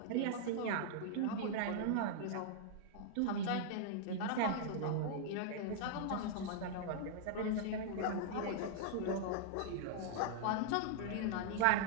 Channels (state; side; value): different; both; correlation -0.01